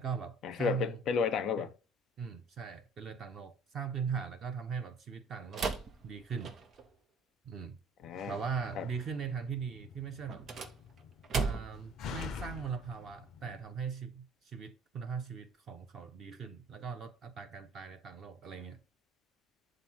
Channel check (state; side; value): normal; both; correlation 0.51